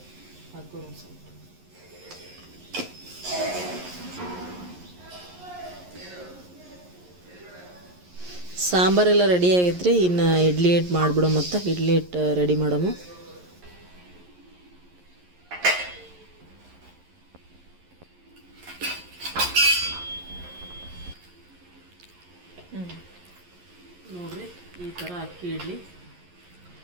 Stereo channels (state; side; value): late; left; 11 ms